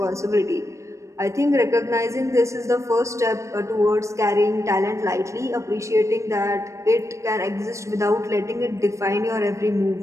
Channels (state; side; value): late; left; 0.15 ms